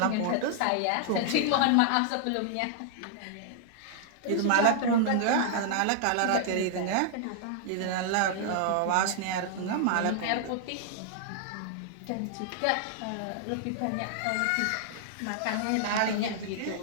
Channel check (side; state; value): both; different; correlation -0.01